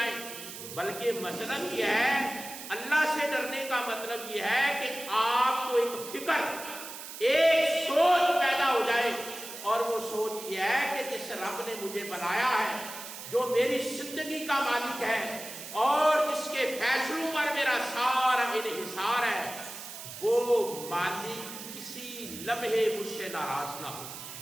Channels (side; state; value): right; noise; hiss, 11 dB below the sound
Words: بلکہ مطلب یہ ہے، اللہ سے ڈرنے کا مطلب یہ ہے کہ آپ کو ایک فکر، ایک سوچ پیدا ہو جائے، اور وہ سوچ یہ ہے کہ جس رب نے مجھے بنایا ہے، جو میری زندگی کا مالک ہے اور جس کے فیصلوں پر میرا سارا انحصار ہے، وہ مالک کسی لمحے مجھ سے ناراض نہ ہو۔